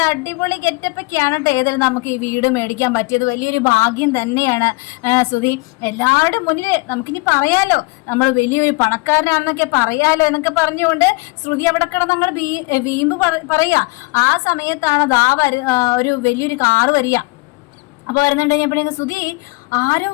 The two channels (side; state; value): right; quieter; 25.6 dB